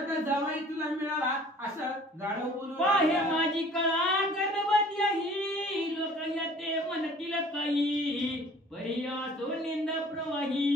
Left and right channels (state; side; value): normal; both; correlation 0.50